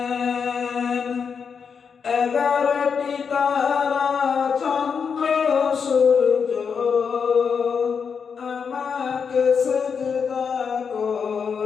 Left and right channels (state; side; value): quieter; right; 6.3 dB